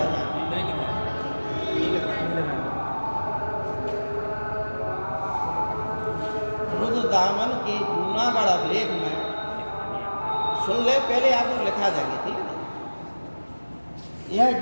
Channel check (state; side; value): inverted; both; correlation -1.00